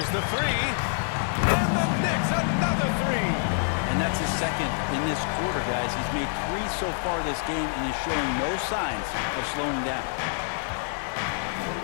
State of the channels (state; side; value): silent; right; 60 dB below the other